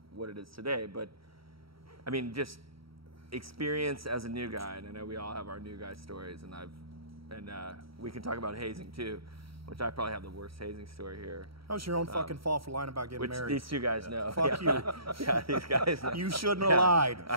what it is today. But, I mean, just experience as a new guy, and I know we all have our new guy stories, and we can talk about hazing too, which I probably have the worst hazing story here. That was your own fucking fault for lying about getting married. Which these two guys know. Fuck you. Yeah, these guys know. You shouldn't have lied. I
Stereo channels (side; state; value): left; late; 0.75 ms